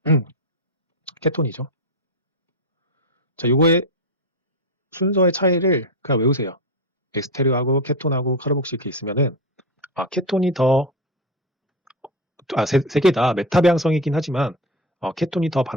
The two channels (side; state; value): both; normal; correlation 0.16